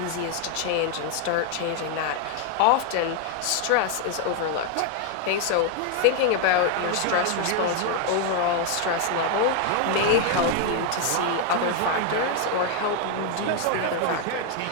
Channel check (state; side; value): different; both; correlation 0.01